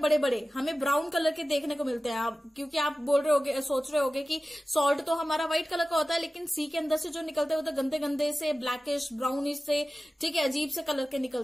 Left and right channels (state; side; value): normal; both; correlation 0.95